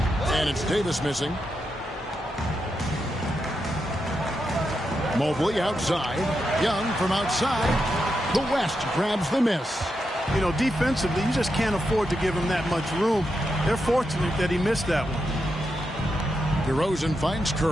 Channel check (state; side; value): normal; both; correlation 0.85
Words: And it's Davis missing. Mobley outside. Young from outside. The West grabs the miss. You know, defensively, you just can't afford to give him that much room. They're fortunate that he missed that one. DeRozan finds